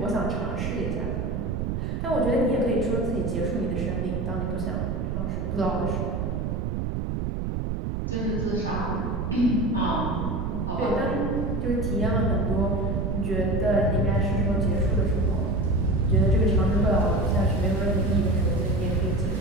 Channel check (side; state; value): right; noise; rumble, 1 dB below the sound